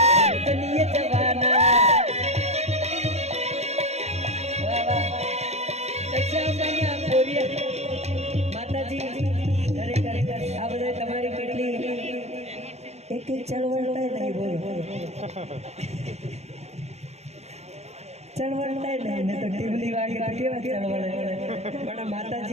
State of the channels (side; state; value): left; late; 0.31 ms